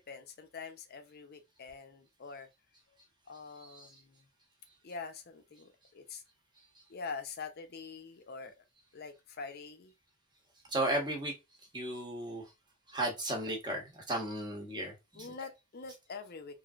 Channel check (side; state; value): both; normal; correlation 0.09